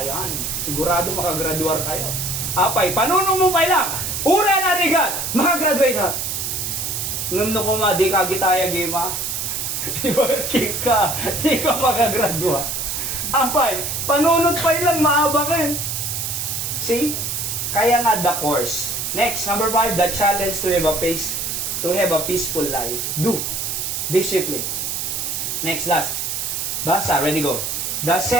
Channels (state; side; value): noise; right; hiss, 2 dB below the sound